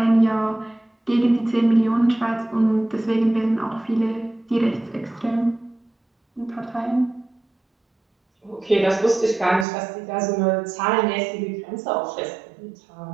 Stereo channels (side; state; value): left; drops out; at 9.7 s